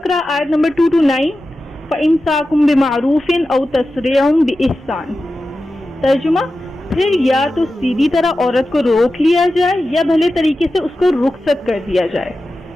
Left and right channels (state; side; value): normal; both; correlation 0.93